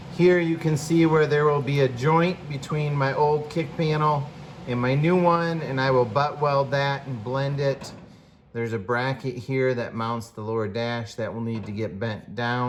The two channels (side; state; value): both; identical; correlation 1.00